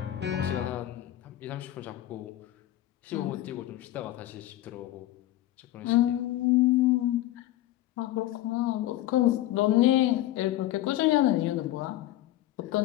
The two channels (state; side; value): quieter; right; 14.8 dB